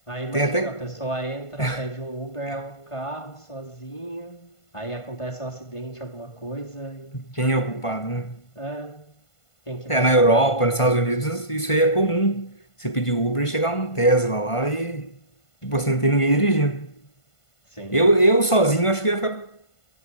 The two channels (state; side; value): late; right; 1.5 ms